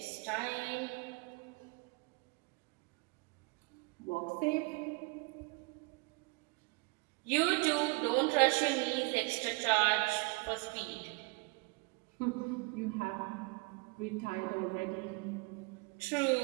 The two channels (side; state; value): left; quieter; 28.8 dB